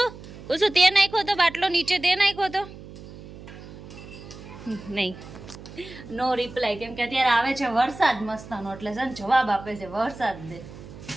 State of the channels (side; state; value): right; noise; hum, 15 dB below the sound